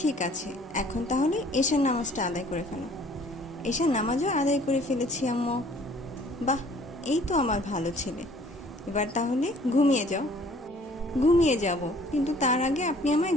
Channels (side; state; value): both; normal; correlation 0.55